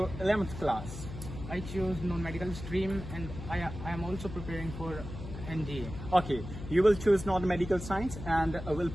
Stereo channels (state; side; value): noise; left; hum, 10 dB below the sound